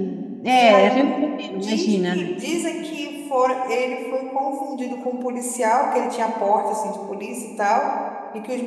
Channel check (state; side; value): identical; both; correlation 1.00